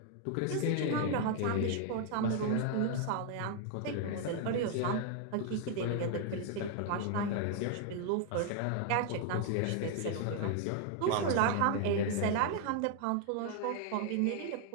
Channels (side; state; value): both; different; correlation 0.00